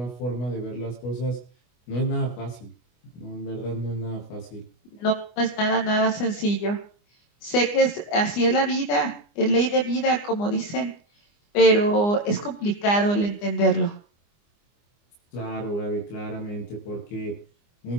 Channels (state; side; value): late; right; 24 ms